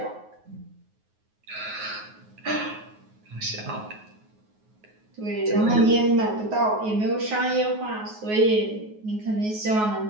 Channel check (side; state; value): left; late; 9.4 ms